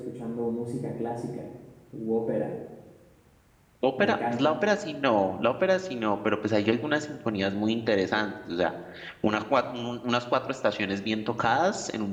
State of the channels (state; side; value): identical; both; correlation 1.00